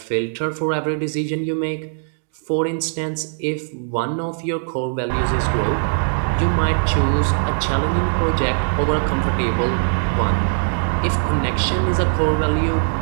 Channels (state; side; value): silent; left; digital silence